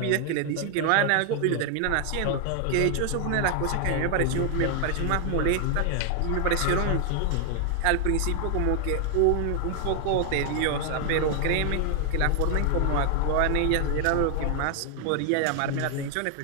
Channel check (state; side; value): different; both; correlation 0.00